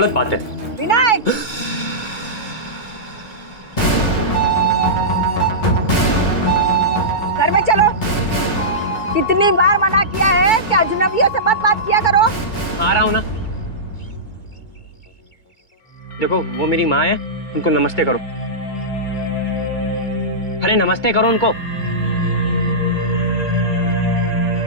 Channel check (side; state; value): right; late; 2.2 ms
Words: बात है। विनय, घर में चलो। कितनी बार मना किया है कि अजनबियों से मत बात किया करो। आ रहा हूँ ना। देखो, वो मेरी माँ है, उनको नमस्ते करो। अरे नमस्ते करो उनको।